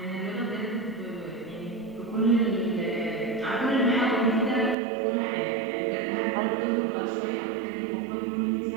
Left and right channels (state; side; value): drops out; left; at 4.8 s